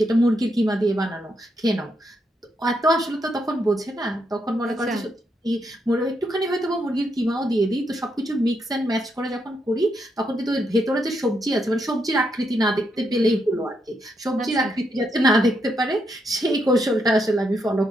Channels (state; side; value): normal; both; correlation 0.80